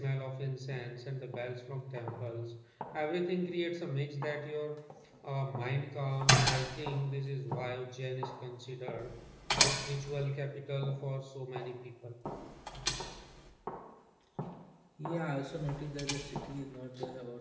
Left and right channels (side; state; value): both; identical; correlation 1.00